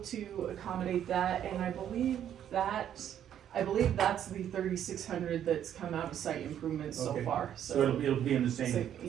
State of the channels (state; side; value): quieter; left; 10.1 dB